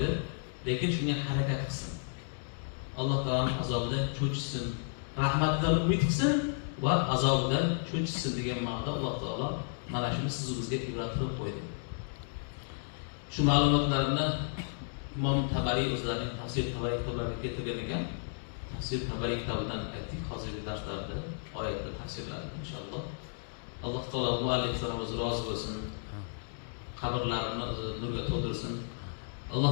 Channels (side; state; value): right; silent; digital silence